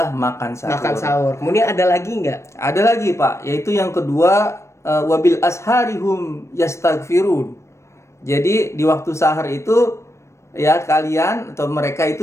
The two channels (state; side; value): late; right; 0.13 ms